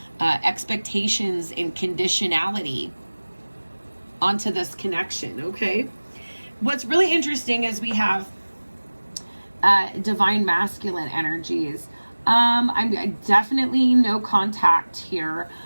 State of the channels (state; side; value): inverted; both; correlation -1.00